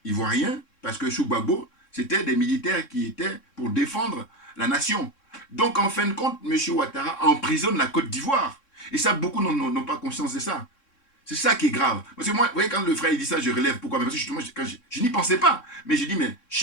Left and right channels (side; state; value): right; late; 3.6 ms